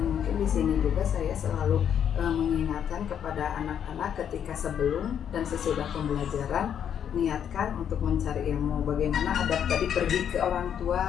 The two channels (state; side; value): quieter; right; 8.8 dB